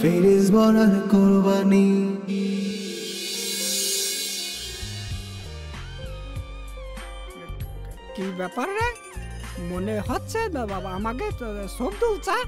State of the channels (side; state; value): both; identical; correlation 1.00